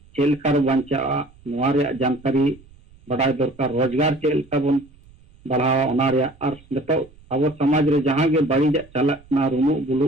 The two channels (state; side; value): noise; right; rumble, 26 dB below the sound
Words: चेक लेका बांचा नवा रे जानकारी बड़ाई दरकार रोजगार चेक लेका बन बढ़ावा ओना रे और नेतो अब समाज रे जहां गे बाड़ी चलक ना रुमु बुलु